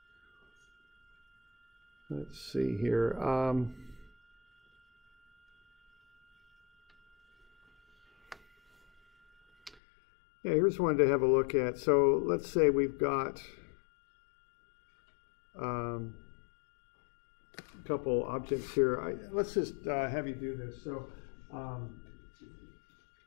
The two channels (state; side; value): drops out; right; at 9.8 s